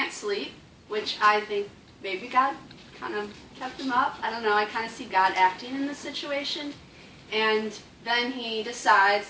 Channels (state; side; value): identical; both; correlation 1.00